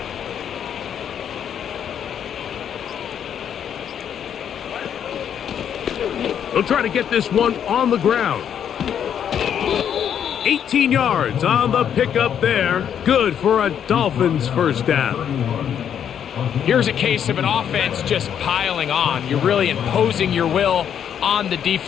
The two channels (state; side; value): quieter; right; 8.8 dB